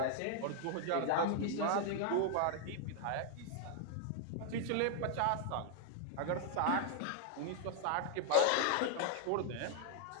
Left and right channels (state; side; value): different; both; correlation -0.01